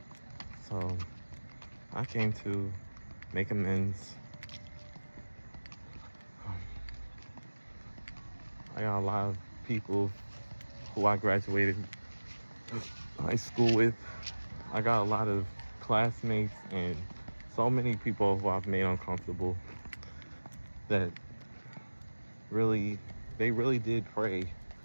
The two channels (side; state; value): both; inverted; correlation -1.00